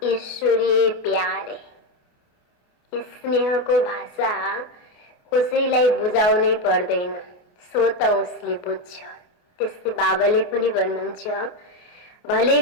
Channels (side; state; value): right; late; 28 ms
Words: ईश्वरीय प्यार है। स्नेह को भाषा कसैलाई बुझाउनै पर्दैन, स्वत उसले बुझ्छ। त्यस्तै बाबाले पनि भन्नुहुन्छ, भले